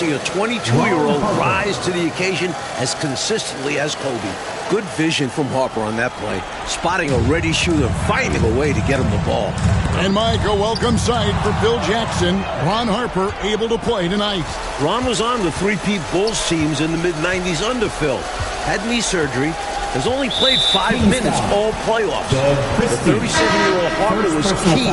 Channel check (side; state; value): both; identical; correlation 1.00